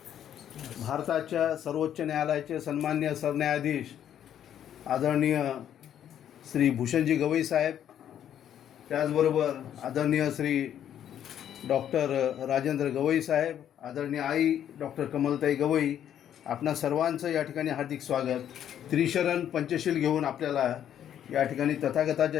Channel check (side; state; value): right; quieter; 10.1 dB